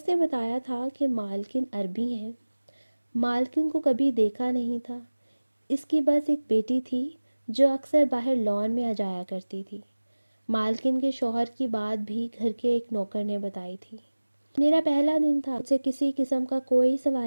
نے بتایا تھا کہ مالکن عربی ہیں۔ مالکن کو کبھی دیکھا نہیں تھا۔ اس کی بس ایک بیٹی تھی جو اکثر باہر لان میں آ جایا کرتی تھی۔ مالکن کے شوہر کی بات بھی گھر کے ایک نوکر نے بتائی تھی۔ میرا پہلا دن تھا، مجھ سے کسی قسم کا کوئی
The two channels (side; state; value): both; inverted; correlation -1.00